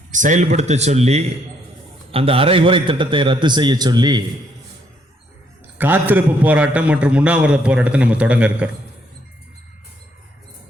செயல்படுத்த சொல்லி அந்த அரைகுறை திட்டத்தை ரத்து செய்ய சொல்லி காத்திருப்பு போராட்டம் மற்றும் உண்ணாவிரத போராட்டத்தை நம்ம தொடங்க இருக்கிறோம்.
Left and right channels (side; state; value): both; normal; correlation 0.70